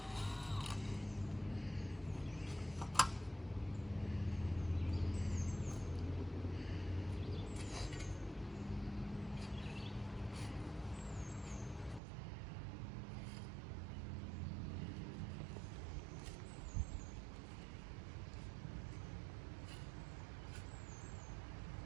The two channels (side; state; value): left; drops out; at 12.0 s